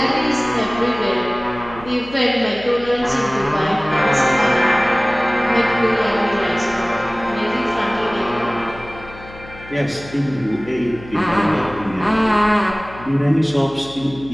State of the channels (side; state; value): left; noise; hum, 18 dB below the sound